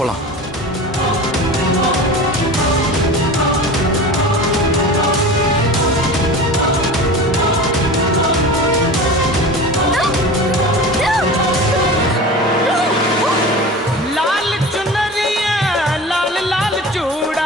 போலாம். लाल चुनरिया लाल लाल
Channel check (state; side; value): normal; both; correlation 0.34